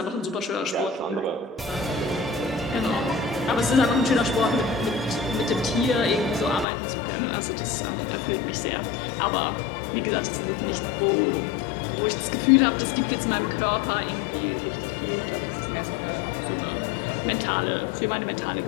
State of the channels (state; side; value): drops out; right; at 6.7 s